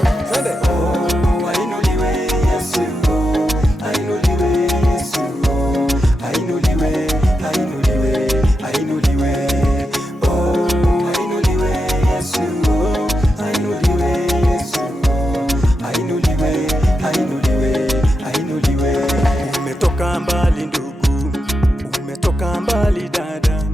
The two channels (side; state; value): both; normal; correlation 0.87